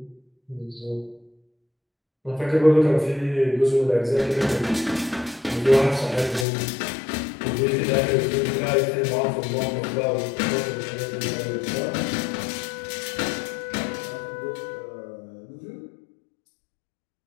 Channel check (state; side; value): drops out; right; at 6.5 s